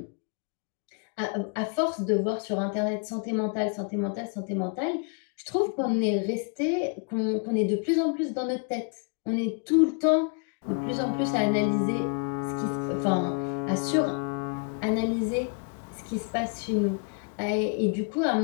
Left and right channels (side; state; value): right; quieter; 38.5 dB